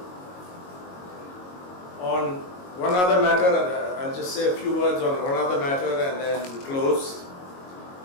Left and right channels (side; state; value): right; late; 22 ms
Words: On one other matter, I'll just say a few words on one other matter and then close.